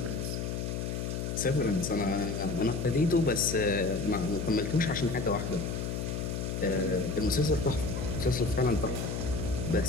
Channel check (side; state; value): left; noise; hum, 3 dB below the sound